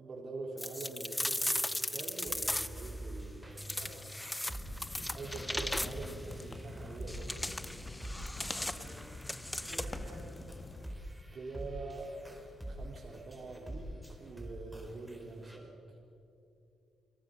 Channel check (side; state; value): both; normal; correlation 0.94